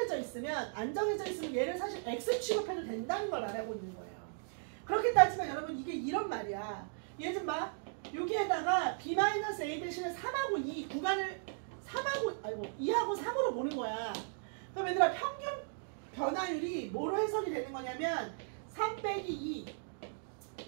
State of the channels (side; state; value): left; silent; digital silence